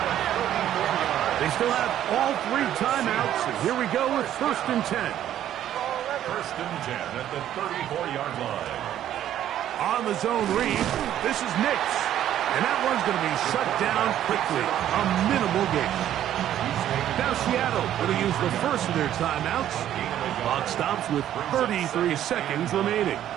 They still have all 3 timeouts. And here we go with first and 10. First and 10 at the 34-yard line. On the zone read, this is Nix. And that one's going to be shut down quickly. A minimal gain. Now Seattle going to use the first of their timeouts. Clock stops with 33 seconds remaining.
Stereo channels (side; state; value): left; quieter; 11.5 dB